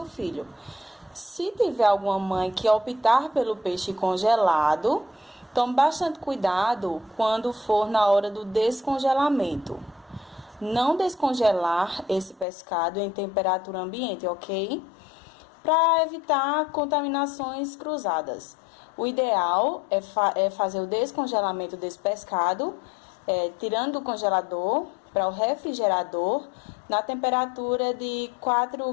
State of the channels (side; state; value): right; drops out; at 12.5 s